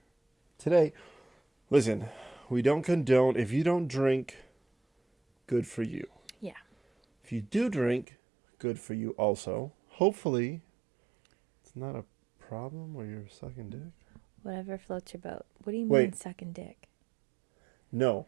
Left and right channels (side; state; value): left; drops out; at 8.1 s